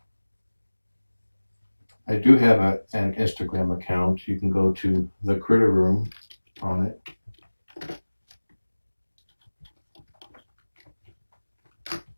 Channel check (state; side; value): inverted; both; correlation -1.00